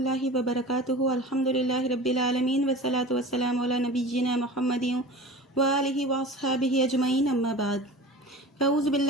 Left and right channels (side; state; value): both; normal; correlation 0.36